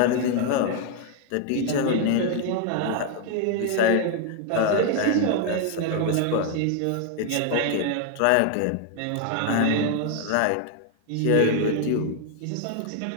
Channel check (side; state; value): both; different; correlation 0.00